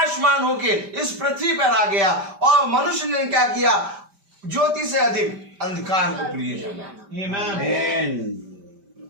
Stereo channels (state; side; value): late; left; 5.1 ms